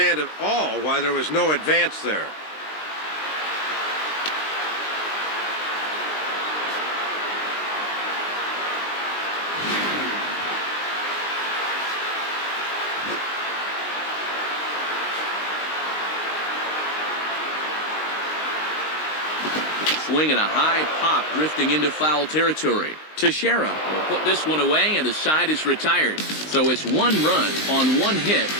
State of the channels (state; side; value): late; right; 19 ms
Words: at all why there was no advance there. Swing and a high pop drifting into foul territory. Teixeira will put this one away, and the side is retired. So it's one run on one hit,